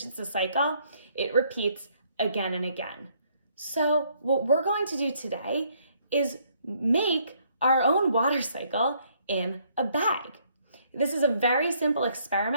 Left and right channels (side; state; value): both; inverted; correlation -0.68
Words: it's a cycle, it repeats again and again. So what we're going to do today is make our own water cycle in a bag. This is a very simple